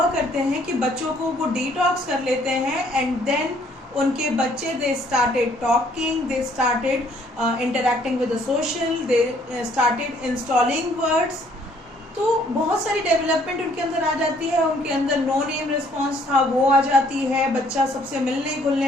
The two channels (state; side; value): normal; both; correlation 0.63